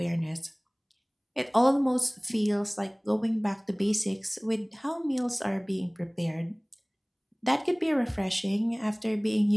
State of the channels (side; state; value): both; identical; correlation 1.00